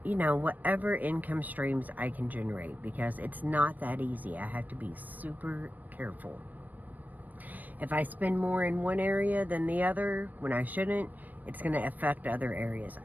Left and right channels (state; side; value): late; left; 0.084 ms